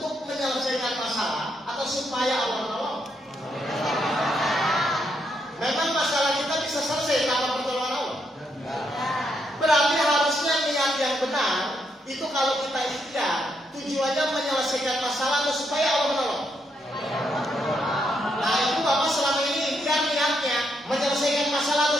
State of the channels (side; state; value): both; normal; correlation 0.78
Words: menyelesaikan masalah atau supaya Allah menolong. Memang masalah kita bisa selesai tanpa pertolongan Allah. Berarti harusnya niat yang benar itu kalau kita ikhtiar tujuannya menyelesaikan masalah atau supaya Allah menolong. Nah itu Bapak selama ini ikhtiar niatnya menyelesaikan masalah